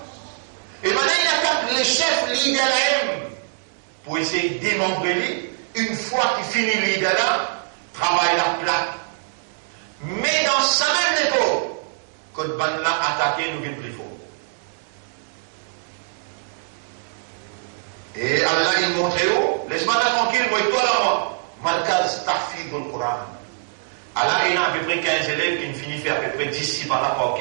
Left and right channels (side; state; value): left; silent; digital silence